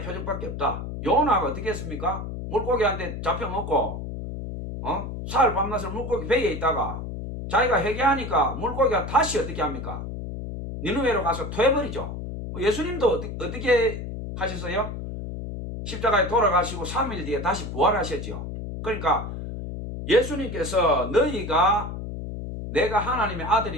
표적밖에 없다. 요나가 어떻게 했습니까? 물고기한테 잡혀먹고 사흘 밤낮을 물고기 배에 있다가 자기가 회개하니까 물고기가 다시 어떻게 합니까? 니느웨로 가서 토해버리죠. 예수님도 어떻게 하셨어요? 십자가에 돌아가시고 3일 뒤에 다시 부활하셨죠. 그러니까 예수님께서 너희가 내가 하나님의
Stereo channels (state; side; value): noise; left; hum, 7 dB below the sound